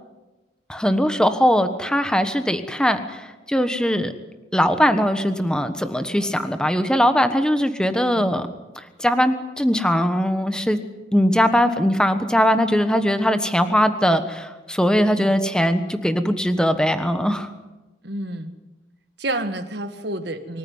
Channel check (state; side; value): normal; both; correlation 0.87